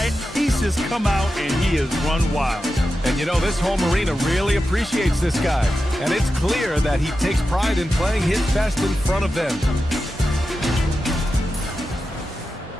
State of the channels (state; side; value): normal; both; correlation 0.91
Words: He's just come out and he has run wild. And you know, this home arena really appreciates this guy. And it's clear that he takes pride in playing his best in front of them.